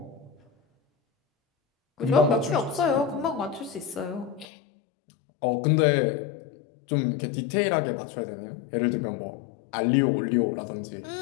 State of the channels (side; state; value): right; drops out; at 4.5 s